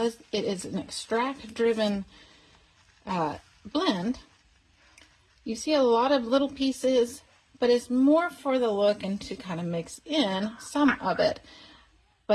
it is an extract-driven blend, you see a lot of little pieces, but it's more for the look and to kind of mix in some of it.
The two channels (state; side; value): identical; both; correlation 1.00